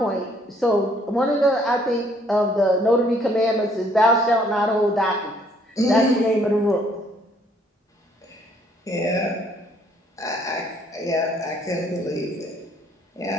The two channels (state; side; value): normal; both; correlation 0.64